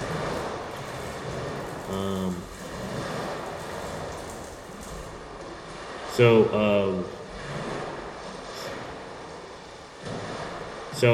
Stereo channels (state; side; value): identical; both; correlation 1.00